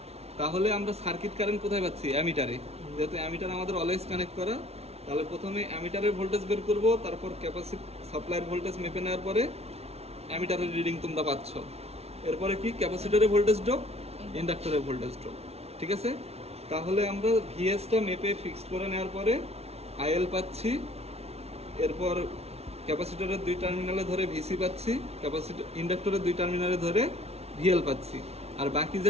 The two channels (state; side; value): late; left; 0.30 ms